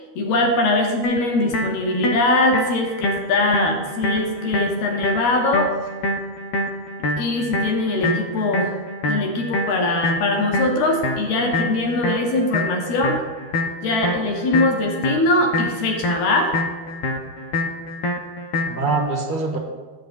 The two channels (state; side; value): late; right; 12 ms